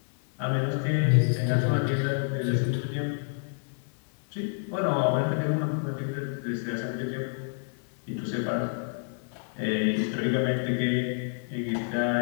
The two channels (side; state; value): right; silent; 59 dB below the other